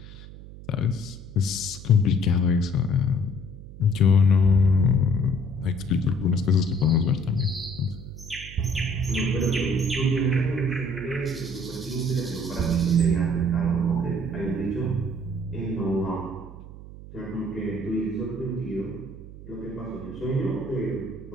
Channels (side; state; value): right; noise; hum, 15 dB below the sound